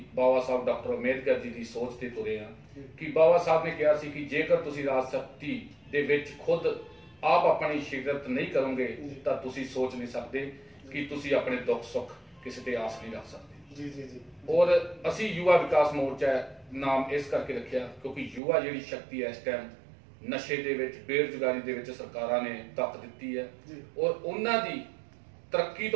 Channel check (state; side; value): drops out; left; at 18.4 s